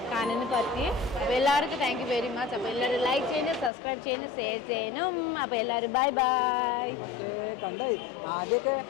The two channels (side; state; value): right; drops out; at 3.7 s